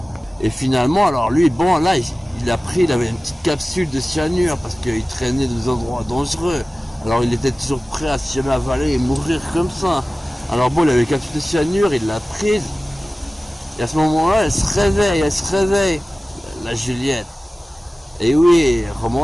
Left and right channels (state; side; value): normal; both; correlation 0.97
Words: Et finalement, alors lui, bon là, il a pris, il avait une petite capsule de cyanure parce qu'il traînait dans des endroits dangereux. Alors il était toujours prêt à se jamais avaler et mourir comme ça. Alors bon, il avait une capsule de cyanure, il l'a prise. Et à ce moment-là, elle se réveille, la Juliette. Et oui,